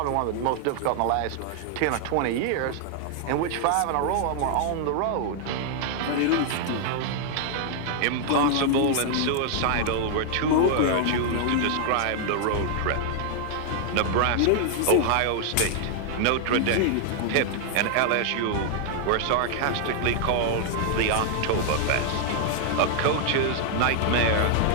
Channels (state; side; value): different; both; correlation 0.00